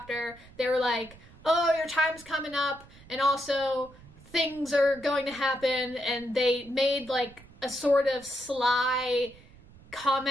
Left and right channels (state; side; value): noise; right; rumble, 23 dB below the sound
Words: they were like, oh, your time's coming up and also things are going to happen, and they made like a sort of sly